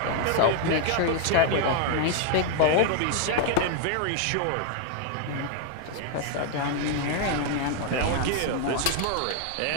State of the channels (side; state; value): both; different; correlation 0.00